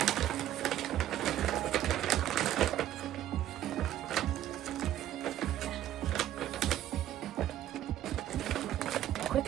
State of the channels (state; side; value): quieter; left; 12.3 dB